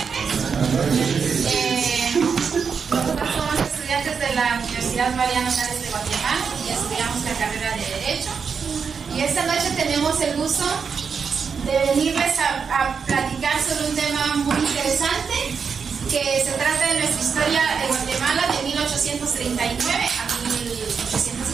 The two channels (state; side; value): quieter; left; 6.0 dB